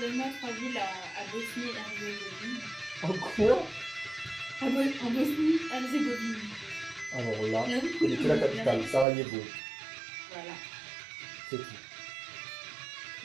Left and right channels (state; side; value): drops out; left; at 9.1 s